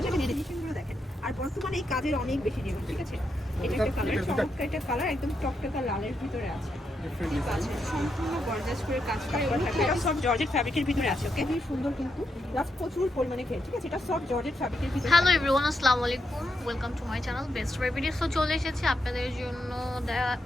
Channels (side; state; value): both; normal; correlation 0.82